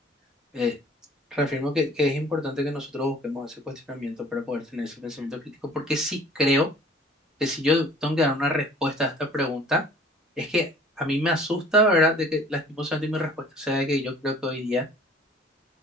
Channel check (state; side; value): normal; both; correlation 0.51